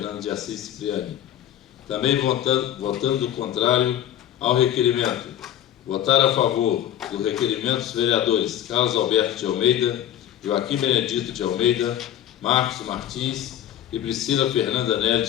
de Assis Cipriani. Também votando contrário ao requerimento. Votar a favor do requerimento os vereadores Carlos Alberto de Almeida, Joaquim Benedito de Almeida, Marcos Martins e Priscila Fernanda Nery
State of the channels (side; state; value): right; quieter; 11.3 dB